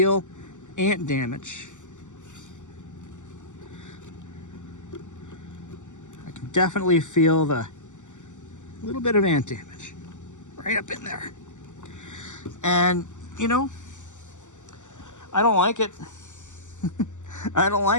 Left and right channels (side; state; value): right; late; 0.85 ms